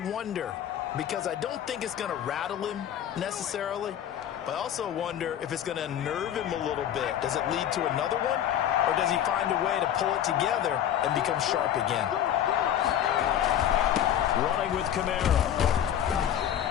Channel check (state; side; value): quieter; right; 10.4 dB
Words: because I don't think it's going to rattle him necessarily, but I also wonder if it's going to unnerve him a little bit. Does it lead to another one, or does he find a way to pull it together and become sharp again? Running with Kamara.